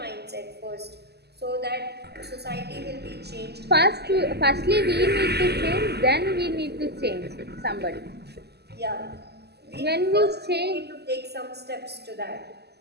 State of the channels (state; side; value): late; left; 0.48 ms